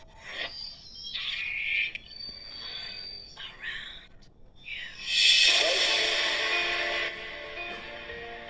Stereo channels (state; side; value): identical; both; correlation 1.00